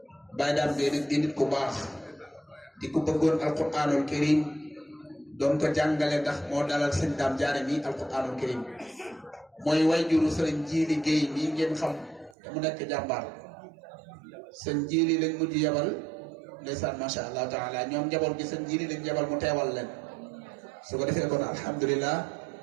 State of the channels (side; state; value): left; drops out; at 12.4 s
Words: Baye Dame Gueye nak di nit ku baax di ko bëggoon alquranul karim doon ko jàngale ndax moo dalal sëñ Dame Diané mi alquranul karim mooy wayjuru sëriñ Jili Gueye mi ngeen xam te mu nekk jàmbaar sëñ Jili lañ mujj yabal ndeysaan macha allah taala ñoom njaboot gi sëñ Jili lañ yabal mu teewal leen su ko defee kon alhamdulilah